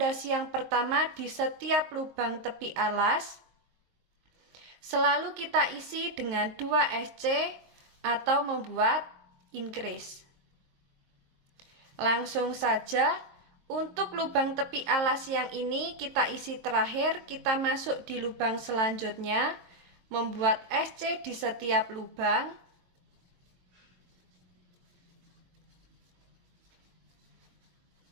yang pertama, di setiap lubang tepi alas selalu kita isi dengan 2 SC atau membuat increase. Langsung saja, untuk lubang tepi alas yang ini kita isi terakhir, kita masuk di lubang selanjutnya, membuat SC di setiap lubang.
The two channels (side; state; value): left; late; 23 ms